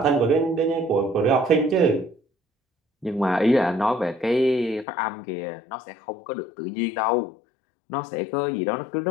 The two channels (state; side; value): drops out; right; at 4.9 s